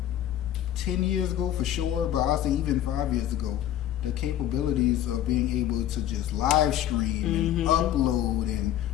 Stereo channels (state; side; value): quieter; right; 11.6 dB